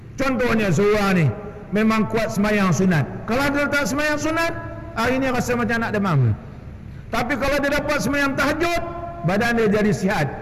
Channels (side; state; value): both; identical; correlation 1.00